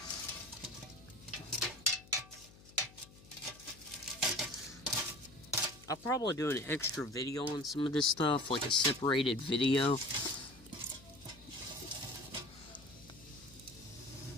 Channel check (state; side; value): noise; left; hum, 22 dB below the sound